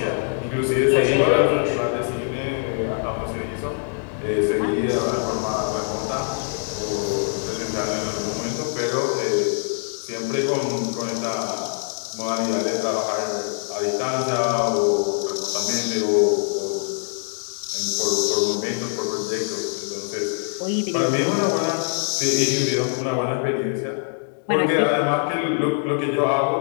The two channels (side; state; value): right; silent; 61 dB below the other